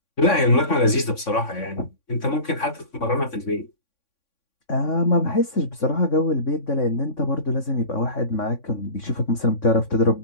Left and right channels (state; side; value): late; right; 3.6 ms